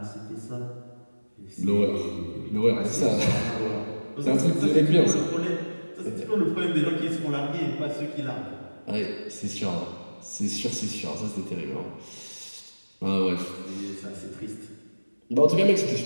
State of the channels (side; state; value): both; inverted; correlation -1.00